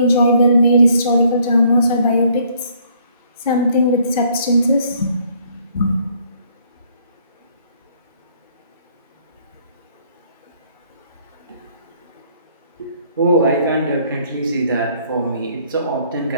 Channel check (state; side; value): inverted; both; correlation -0.64